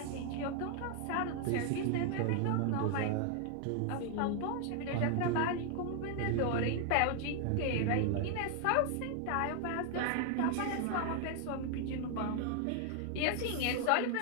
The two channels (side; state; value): both; different; correlation 0.00